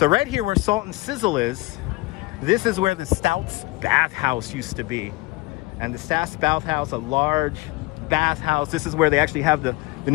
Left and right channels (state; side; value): quieter; right; 22.6 dB